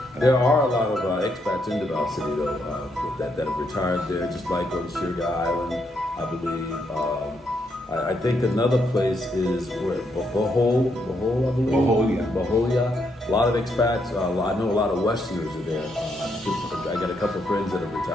there are a lot of expats in Davao City though that have retired there, just like on Sugar Island, I believe. I think another place is where Bohol, I believe. Boholia. A lot of expats. I know a lot of Westerners are there. I got a couple of friends that have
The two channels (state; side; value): normal; both; correlation 0.77